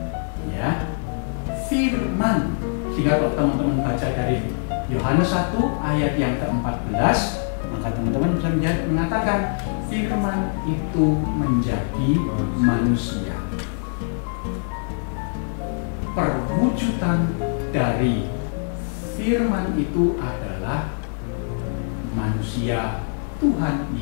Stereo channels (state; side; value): silent; right; digital silence